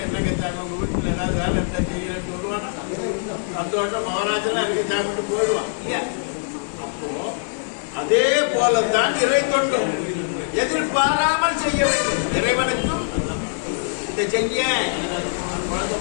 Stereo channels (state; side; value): silent; right; digital silence